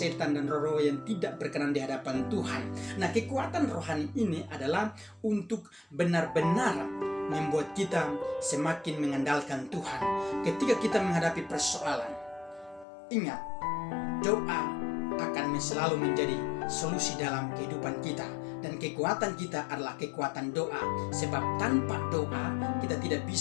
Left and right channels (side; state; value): right; drops out; at 12.9 s